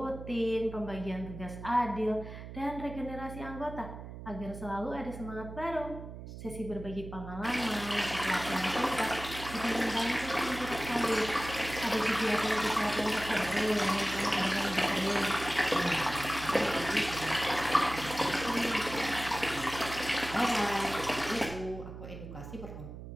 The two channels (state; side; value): noise; right; hum, 11 dB below the sound